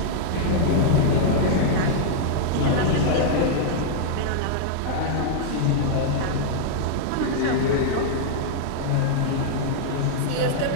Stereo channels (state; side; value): different; both; correlation -0.01